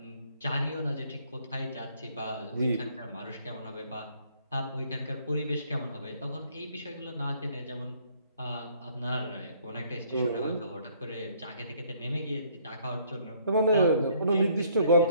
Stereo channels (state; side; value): inverted; both; correlation -0.63